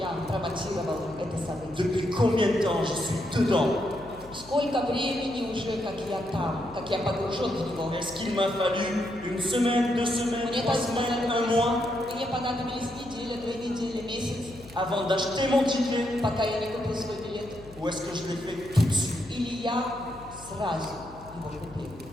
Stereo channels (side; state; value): left; noise; hum, 20 dB below the sound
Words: промотировал это событие? Depuis combien de temps je suis dedans? Сколько времени уже, как я там, как я погружен в него? Est-ce qu'il m'a fallu une semaine, 2 semaines, Мне 3 semaines, un mois понадобились неделя, 2 недели, месяц, avant d'acheter mon ticket? пока я не купил свой билет? Ou est-ce que je l'ai fait tout de suite? Или я сразу его купил?